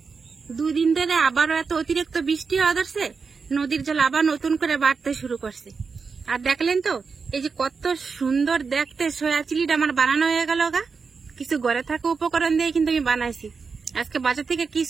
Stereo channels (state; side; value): quieter; left; 5.1 dB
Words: দুদিন ধরে আবারও এত অতিরিক্ত বৃষ্টি হওয়া ধরছে, নদীর জল আবার নতুন করে বাড়তে শুরু করছে। আর দেখলেন তো এই যে কত সুন্দর দেখতে সয়া চিলিটা আমার বানানো হয়ে গেল গা। কিছু ঘরে থাকা উপকরণ দিয়ে কিন্তু আমি বানাইছি, আজকে বাজার থেকে